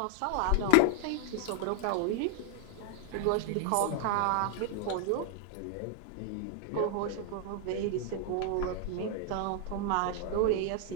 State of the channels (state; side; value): different; both; correlation 0.00